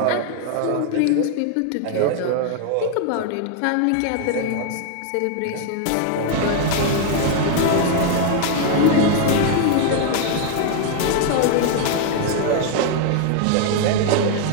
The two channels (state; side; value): different; both; correlation 0.00